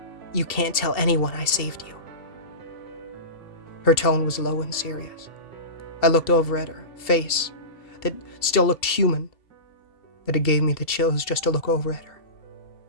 You can't tell anyone I saved you. Her tone was low and serious. I looked over at her face that still looked human, but it gave me the chills just to look over at her.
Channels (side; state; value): right; late; 2.7 ms